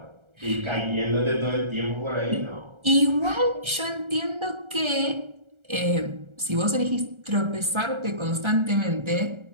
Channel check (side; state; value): left; late; 1.3 ms